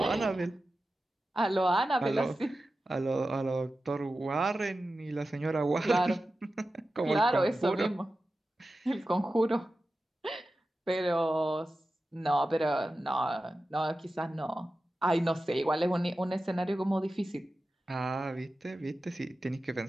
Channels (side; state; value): both; normal; correlation 0.93